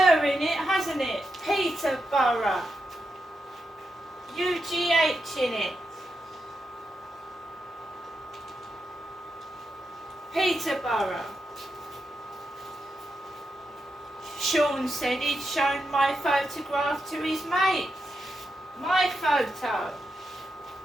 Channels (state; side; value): normal; both; correlation 0.86